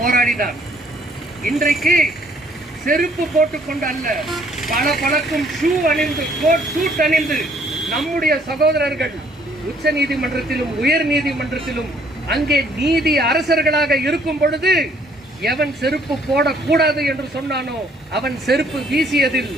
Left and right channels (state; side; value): normal; both; correlation 0.63